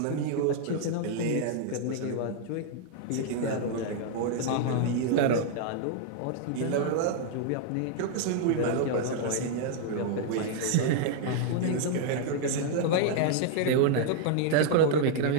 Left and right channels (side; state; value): both; different; correlation -0.01